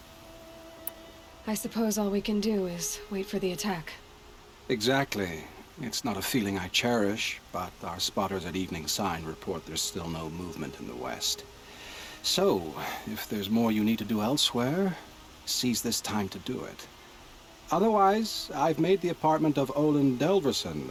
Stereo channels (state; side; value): identical; both; correlation 1.00